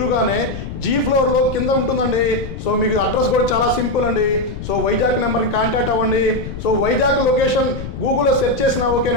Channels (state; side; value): noise; left; rumble, 8 dB below the sound